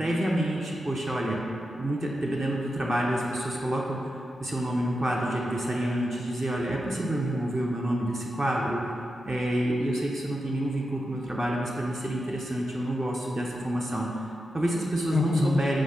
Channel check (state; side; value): normal; both; correlation 0.89